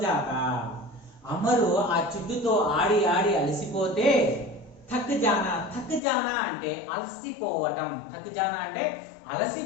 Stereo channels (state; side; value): drops out; right; at 6.0 s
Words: जाता. అమరు ఆ చెట్టుతో ఆడి ఆడి అలసిపోతే థక్ జానా అంటే అలసిపోవటం. థక్ జానా అంటే